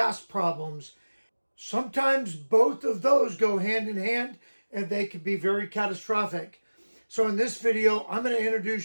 problems. Sometimes both of those go hand in hand, and they can be very catastrophic. So in this video, I'm going to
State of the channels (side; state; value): both; inverted; correlation -1.00